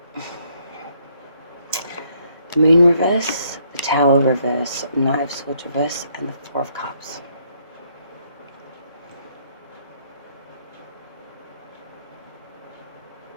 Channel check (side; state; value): both; inverted; correlation -0.70